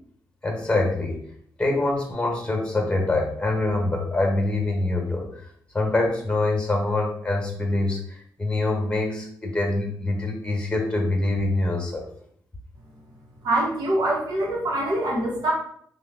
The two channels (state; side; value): normal; both; correlation 0.81